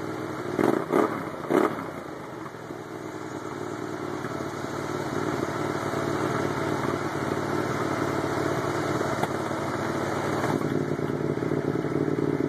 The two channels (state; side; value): identical; both; correlation 1.00